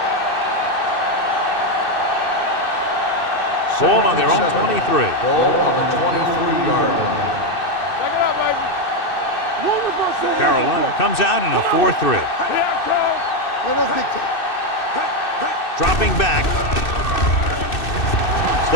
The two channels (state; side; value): late; right; 2.6 ms